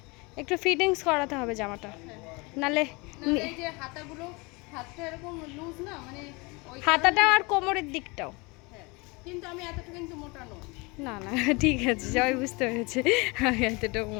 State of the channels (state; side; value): quieter; right; 26.9 dB